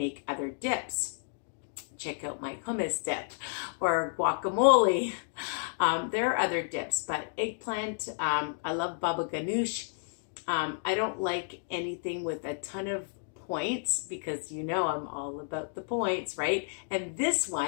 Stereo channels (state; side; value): silent; right; digital silence